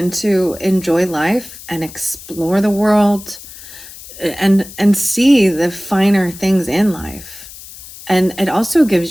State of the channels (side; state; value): left; noise; hiss, 16 dB below the sound